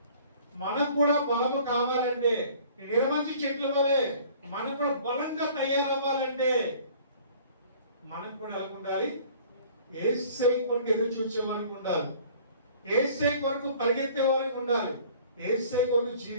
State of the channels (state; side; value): inverted; both; correlation -0.51